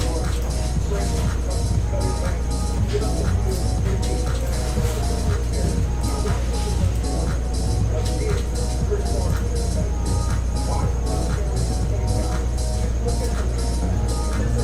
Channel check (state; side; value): identical; both; correlation 1.00